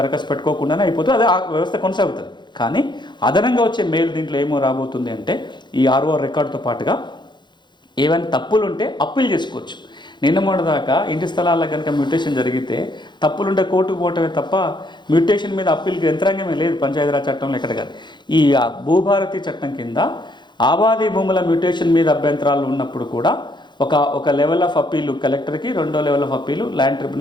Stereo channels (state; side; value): late; right; 0.22 ms